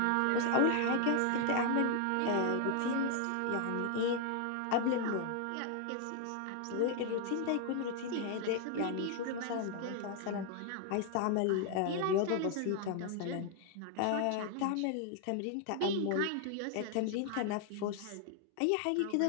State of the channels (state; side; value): different; both; correlation 0.00